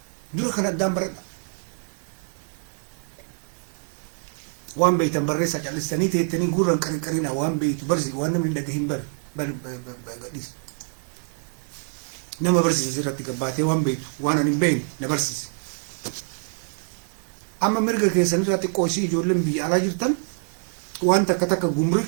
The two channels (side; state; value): left; silent; 62 dB below the other